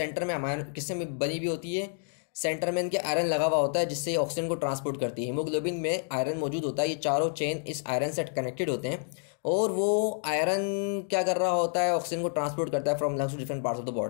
में अमाइनो किससे बनी हुई होती है? सेंटर में इनके आयरन लगा हुआ होता है, जिससे ऑक्सीजन को ट्रांसपोर्ट करती है। हीमोग्लोबिन में आयरन मौजूद होता है, ये चारों चेन इस आयरन से कनेक्टेड होते हैं, और वो आयरन क्या कर रहा होता है? ऑक्सीजन को ट्रांसपोर्ट करता है from lungs to different parts of the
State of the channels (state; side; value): silent; right; 58 dB below the other